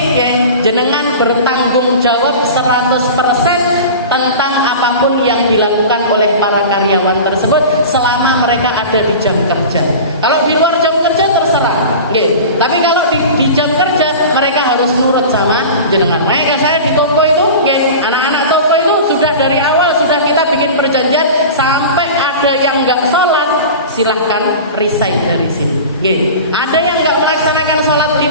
jenengan bertanggung jawab 100% tentang apapun yang dilakukan oleh para karyawan tersebut selama mereka ada di jam kerja. Kalau di luar jam kerja terserah, tapi kalau di jam kerja mereka harus nurut sama jenengan. Makanya saya di toko itu, anak-anak toko itu sudah dari awal sudah kita bikin perjanjian, sampai ada yang nggak sholat silahkan resign dari sini. Ada yang nggak melaksanakan sholat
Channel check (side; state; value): both; inverted; correlation -0.34